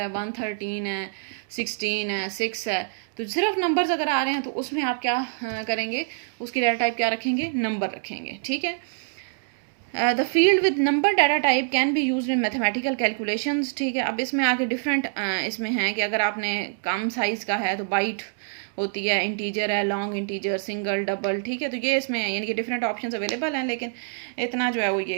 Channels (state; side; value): silent; left; digital silence